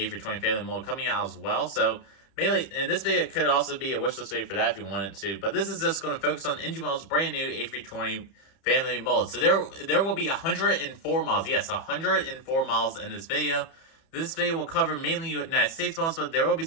family mold coming out as well. So mainly, and this video could also be a wishlist video for that if you wanted to. But this is just going to focus on NG Miles' brand new A320 family mold. So there will be 104 miles. Yes, 104 miles in this video. This video will cover mainly United States models, but there will be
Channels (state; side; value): late; right; 31 ms